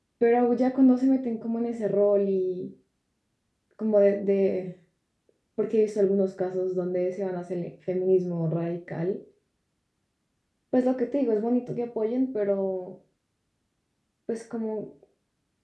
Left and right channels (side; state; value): both; identical; correlation 1.00